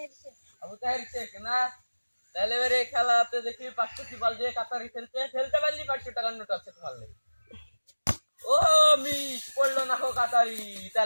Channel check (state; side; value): inverted; both; correlation -1.00